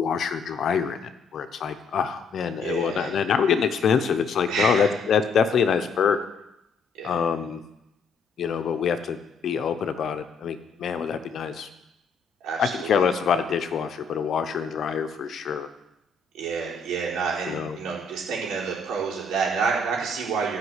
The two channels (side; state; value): right; quieter; 4.1 dB